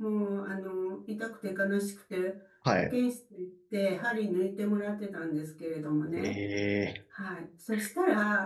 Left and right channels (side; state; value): both; identical; correlation 1.00